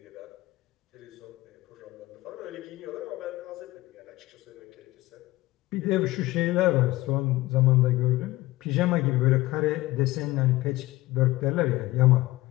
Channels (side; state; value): right; quieter; 18.8 dB